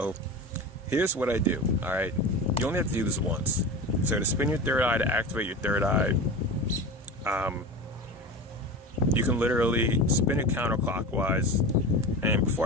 here's what I do. All right, you only have to do this once. So to spin your third eye, to activate your third eye, you can literally spin it counterclockwise. And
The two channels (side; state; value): both; normal; correlation 0.29